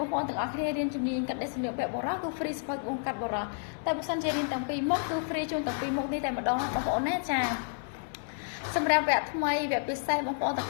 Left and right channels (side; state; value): right; silent; 57 dB below the other